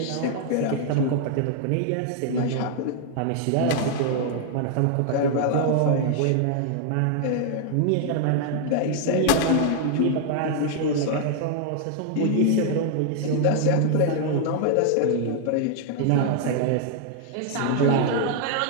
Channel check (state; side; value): different; both; correlation 0.00